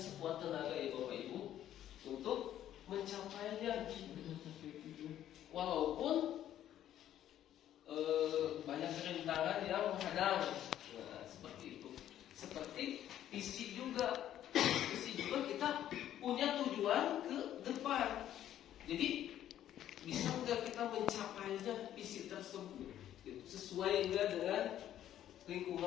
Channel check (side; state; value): right; quieter; 11.6 dB